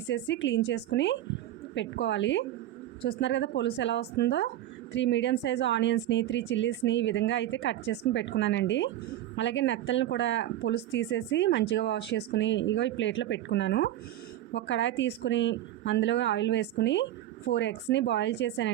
క్లీన్ చేసుకుని పెట్టుకోవాలి. చూస్తున్నారు కదా పొలుసు ఎలా వస్తుందో. 3 మీడియం సైజ్ ఆనియన్స్ని, 3 చిల్లీస్ని ఈ విధంగా అయితే కట్ చేసుకుని పెట్టుకున్నానండి. అలాగే నెత్తలను కూడా పొలుసు తీసేసి మంచిగా వాష్ చేసుకుని ఈ ప్లేట్లో పెట్టుకున్నాను. ఒక కడాయి తీసుకుని అందులో ఆయిల్ వేసుకుని 4 ఎగ్స్ని బాయిల్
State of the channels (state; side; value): quieter; left; 13.0 dB